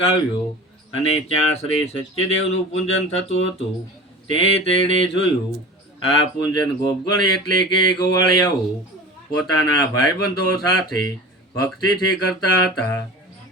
આવ્યો અને ત્યાં શ્રી સત્યદેવનું પૂજન થતું હતું. તેણે જોયું. આ પૂજન ગોપગણ એટલે કે ગોવાળિયાઓ પોતાના ભાઈબંધો સાથે ભક્તિથી કરતા હતા.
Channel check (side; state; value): both; normal; correlation 0.36